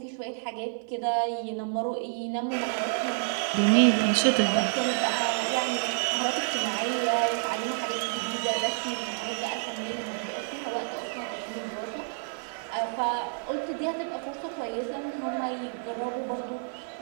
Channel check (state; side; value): silent; left; 59 dB below the other